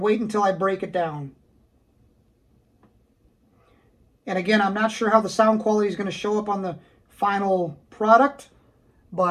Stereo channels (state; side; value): identical; both; correlation 1.00